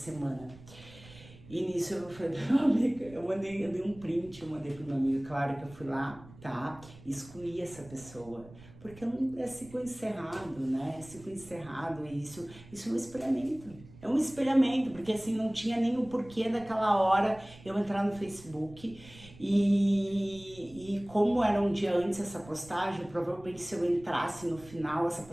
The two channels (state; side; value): noise; right; rumble, 20 dB below the sound